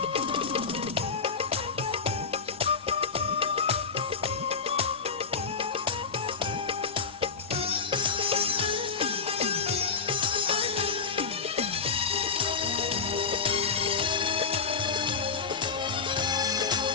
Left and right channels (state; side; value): quieter; right; 5.3 dB